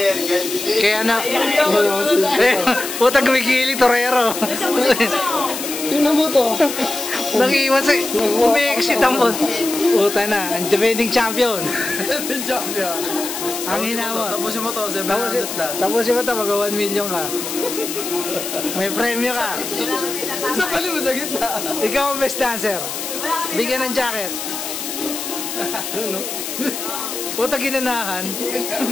Kaya na... Putang gumigili, Torero. Tingnan mo to. Nag-iwan sa... Umi-exit ang... Puta na, ang defending champion. Defending champion. Ang hinawa. Tapusin mo to, 700 lang. Tapusin mo to, mag-1 million ka. May premyo ka. Sa pali mo sa gitna. Ikaw ang best dancer. Bigyan ng jacket. Ano? Puta ginanahan.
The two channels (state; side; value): noise; left; hiss, 6 dB below the sound